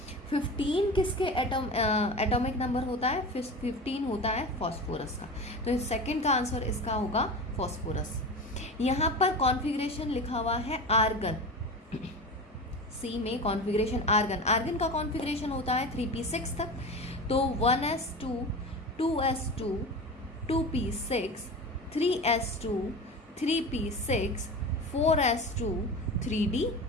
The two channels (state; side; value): normal; both; correlation 0.29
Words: 15 किसके एटॉमिक नंबर होता है? 15 होता है फॉस्फोरस का। तो सेकंड का आंसर इसका होगा फॉस्फोरस। यहाँ पर कॉन्फ़िगरेशन लिखा हुआ है आर्गन, सी में कॉन्फ़िगरेशन आर्गन, आर्गन का कॉन्फ़िगरेशन होता है 3p6 तक, तो 1s2 2s2 2p6 3s2 3p6 4s2